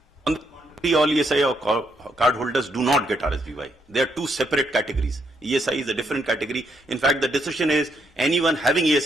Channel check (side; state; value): both; normal; correlation 0.76